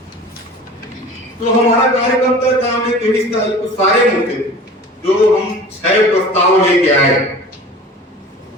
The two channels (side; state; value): both; normal; correlation 0.41